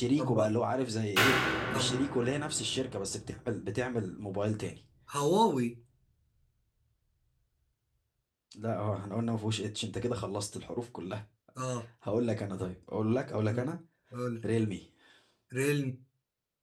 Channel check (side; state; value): both; identical; correlation 1.00